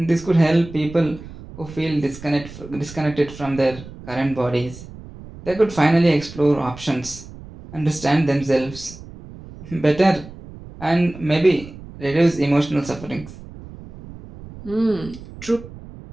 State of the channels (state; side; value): noise; right; rumble, 16 dB below the sound